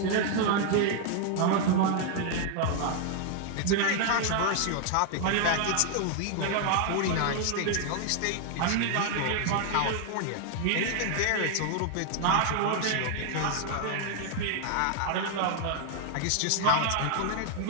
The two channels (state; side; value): different; both; correlation 0.00